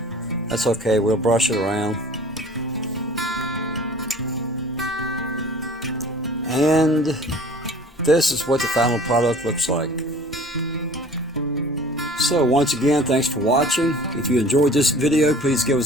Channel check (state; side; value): normal; both; correlation 0.47